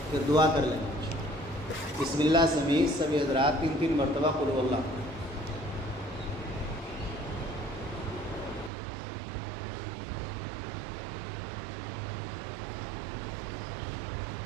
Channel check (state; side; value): drops out; left; at 8.7 s